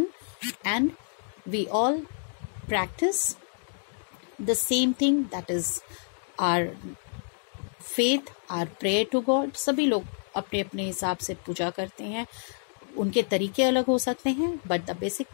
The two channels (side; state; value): right; silent; 59 dB below the other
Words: and we all practice the same thing, that is our faith, our prayer to God. सभी लोग अपने अपने हिसाब से पूजा करते हैं. उनके तरीके अलग हो सकते हैं, but the basic